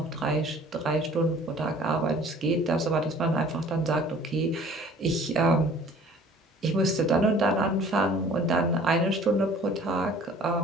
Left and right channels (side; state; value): both; normal; correlation 0.50